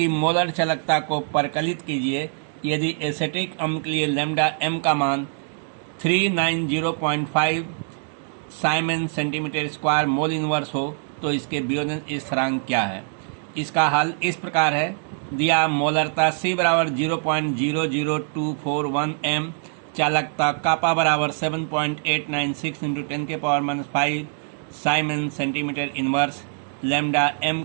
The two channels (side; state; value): left; silent; 63 dB below the other